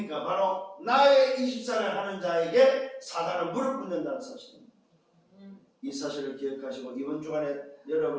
바로 나의 24를 하는 자에게 사탄은 무릎 꿇는다는 사실입니다. 이 사실을 기억하시고 이번 주간에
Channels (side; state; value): both; identical; correlation 1.00